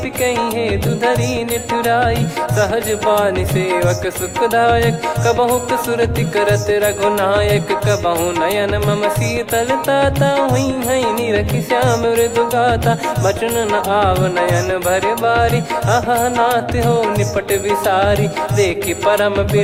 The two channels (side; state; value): both; identical; correlation 1.00